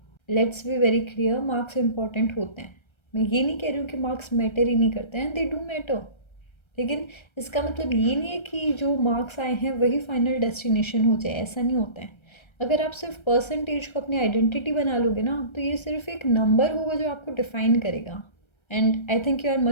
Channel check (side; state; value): right; late; 1.3 ms